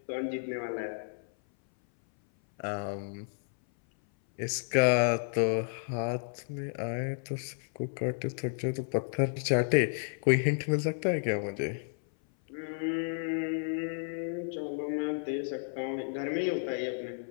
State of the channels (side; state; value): right; silent; 57 dB below the other